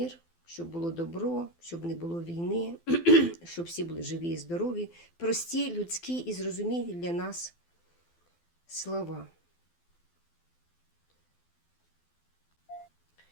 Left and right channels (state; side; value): late; right; 12 ms